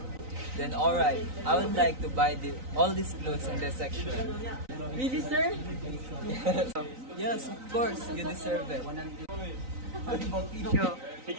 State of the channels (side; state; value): left; late; 3.9 ms